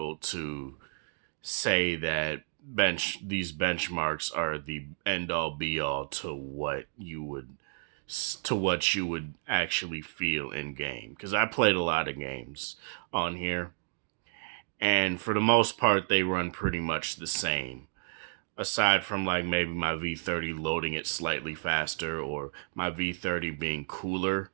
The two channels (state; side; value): silent; left; digital silence